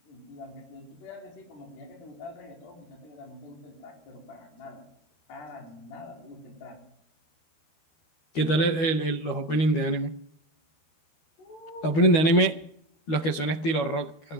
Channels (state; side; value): late; right; 12 ms